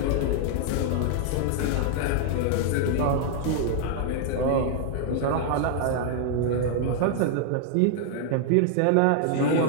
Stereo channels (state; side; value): different; both; correlation 0.00